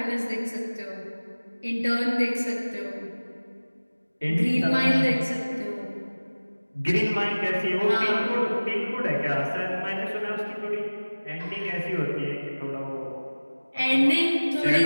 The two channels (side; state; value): both; inverted; correlation -1.00